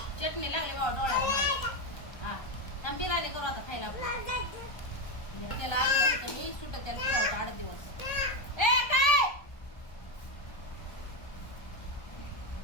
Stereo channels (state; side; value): late; right; 1.3 ms